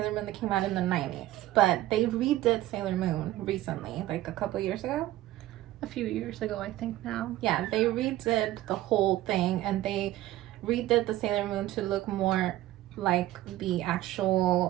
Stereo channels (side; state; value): left; quieter; 15.3 dB